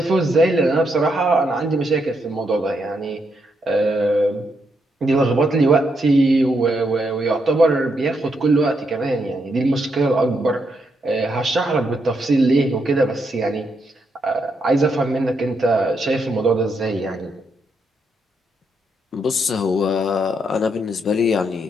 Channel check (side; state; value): both; normal; correlation 0.79